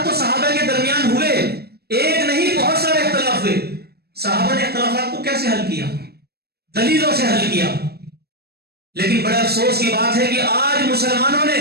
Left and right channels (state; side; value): late; left; 0.46 ms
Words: تو صحابہ کے درمیان ہوئے، ایک نہیں بہت سارے اختلاف ہوئے۔ صحابہ نے اختلافات کو کیسے حل کیا؟ دلیلوں سے حل کیا۔ لیکن بڑے افسوس کی بات ہے کہ آج مسلمانوں نے